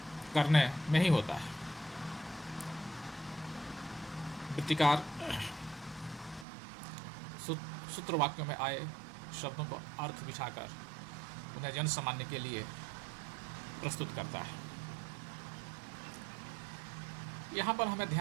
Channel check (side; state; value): left; drops out; at 6.5 s